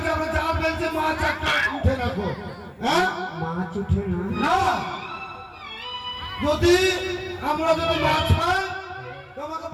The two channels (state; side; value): identical; both; correlation 1.00